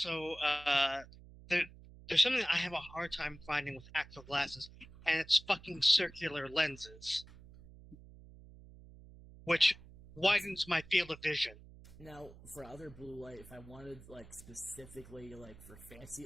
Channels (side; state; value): right; noise; hum, 19 dB below the sound